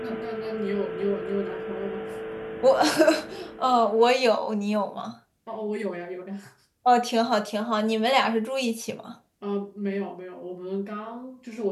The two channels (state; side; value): identical; both; correlation 1.00